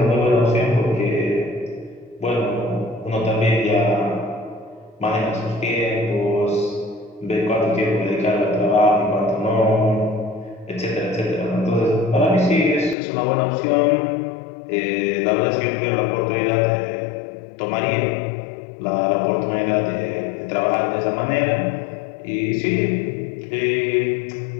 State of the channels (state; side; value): drops out; right; at 13.0 s